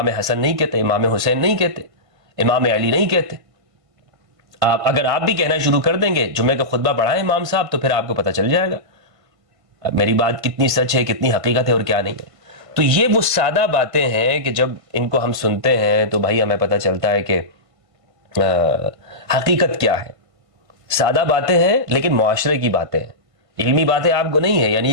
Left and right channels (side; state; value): left; late; 1.5 ms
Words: حسن نہیں کہتے، امام حسین نہیں کہتے، امام علی نہیں کہتے۔ اگر آپ بھی کہنا شروع کر دیں گے، جمعے کا خطبہ پڑھائیں امام صاحب، تو پھر آپ کو پتہ چل جائے گا میری بات کتنی سچ ہے، کتنی حقیقت ہے اور کیا نہیں ہے۔ تو یہ وہ سادہ باتیں ہیں کہ جب ان کو ہم سنتے ہیں تو بھائی ہمیں پتہ چلتا ہے کہ حقیقت کیا ہے۔ سادہ باتیں ہیں لیکن معاشرے کی باتیں ہیں، علمی باتیں آپ کو نہیں ہے، یعنی